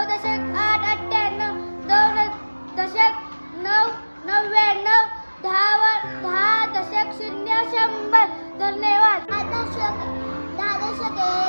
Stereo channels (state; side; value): inverted; both; correlation -1.00